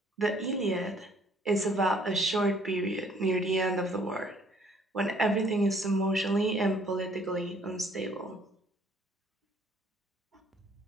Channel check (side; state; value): both; normal; correlation 0.61